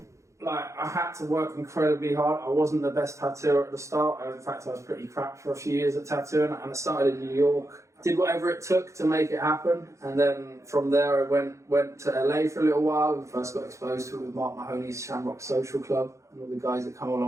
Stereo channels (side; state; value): left; late; 0.15 ms